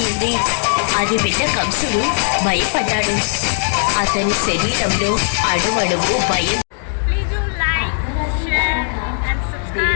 అది విన్న కంసుడు భయపడ్డాడు. అతని శరీరంలో అణువణువు భయం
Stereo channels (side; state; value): right; silent; digital silence